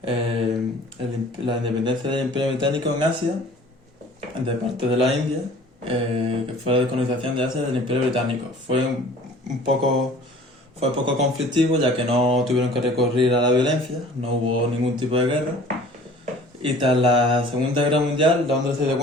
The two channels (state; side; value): normal; both; correlation 0.48